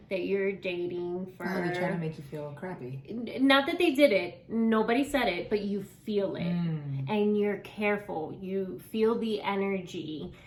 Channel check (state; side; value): identical; both; correlation 1.00